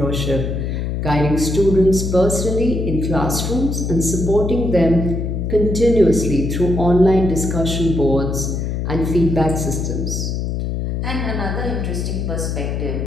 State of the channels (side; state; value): left; noise; hum, 2 dB below the sound